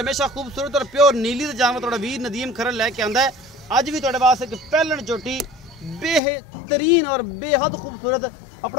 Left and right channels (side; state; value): right; drops out; at 6.2 s